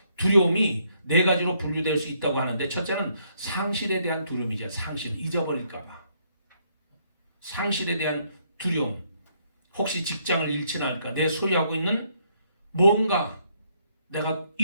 두려움이 4가지로 분류될 수 있다고 하는데 첫째는 상실에 대한 두려움이죠. 상실, 잊어버릴까 봐. 상실에 대한 두려움. 혹시 직장을 잃지는 않을까? 내 소유하고 있는 뭔가 내가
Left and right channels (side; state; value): both; inverted; correlation -0.71